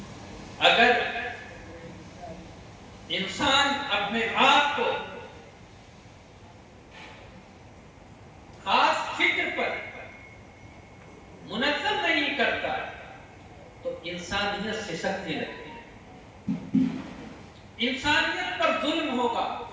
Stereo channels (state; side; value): identical; both; correlation 1.00